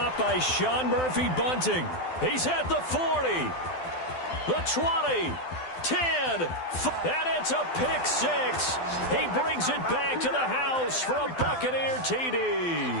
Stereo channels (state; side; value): late; right; 12 ms